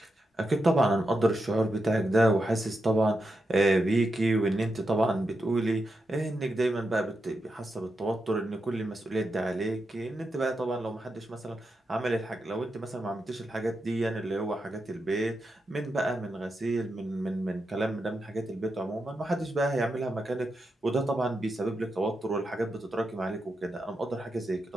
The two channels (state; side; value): normal; both; correlation 0.87